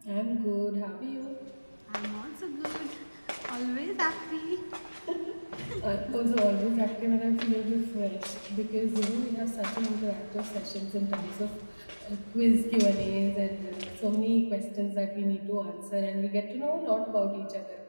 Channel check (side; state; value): both; inverted; correlation -1.00